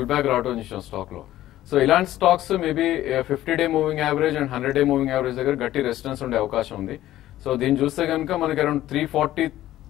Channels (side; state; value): right; quieter; 14.1 dB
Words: బ్యాక్ రావడం చేసాం స్టాక్ లో. సో ఇలాంటి stocks maybe 50-day moving average and 100-day moving average దగ్గర గట్టి రెసిస్టెన్స్ ఉండే అవకాశం ఉంది. సో దీన్ని చూస్తే కనుక మనకి అరౌండ్